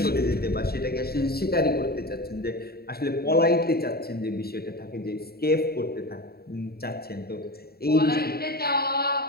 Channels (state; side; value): late; right; 0.45 ms